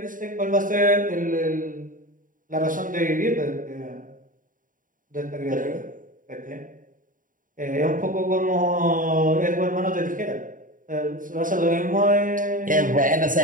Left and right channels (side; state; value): left; late; 0.39 ms